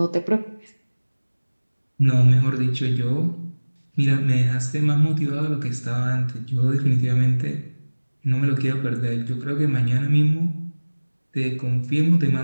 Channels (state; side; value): inverted; both; correlation -1.00